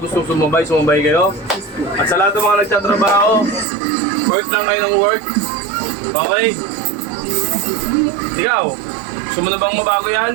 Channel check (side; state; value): left; drops out; at 3.7 s